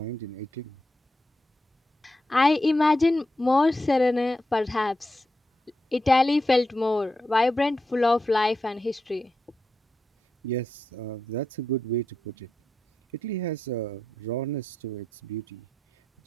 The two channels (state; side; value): normal; both; correlation 0.87